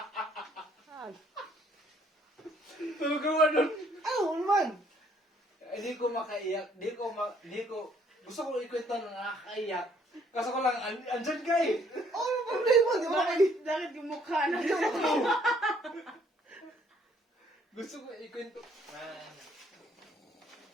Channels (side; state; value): both; normal; correlation 0.64